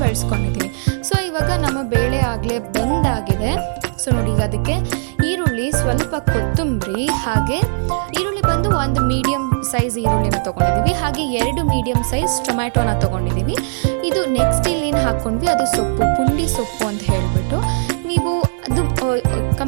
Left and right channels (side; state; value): left; silent; 62 dB below the other